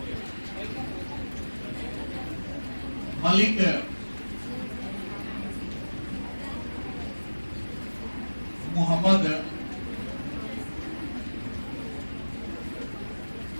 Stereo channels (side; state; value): both; inverted; correlation -1.00